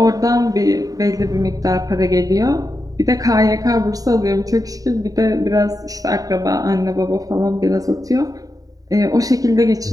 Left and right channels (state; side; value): late; left; 0.18 ms